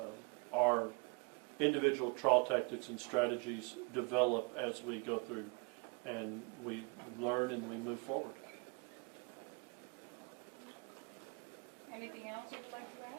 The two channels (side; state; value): left; quieter; 31.9 dB